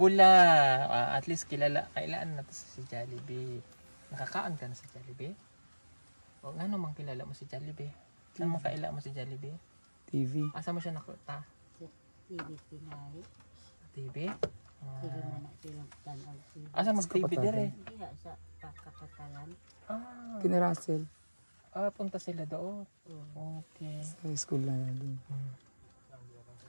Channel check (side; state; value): both; inverted; correlation -1.00